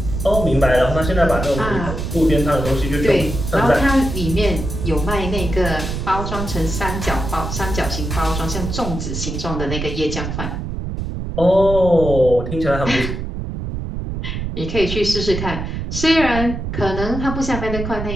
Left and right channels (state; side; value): noise; right; rumble, 5 dB below the sound